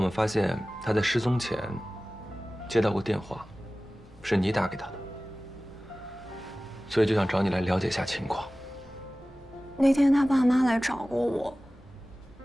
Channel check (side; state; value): both; normal; correlation 0.97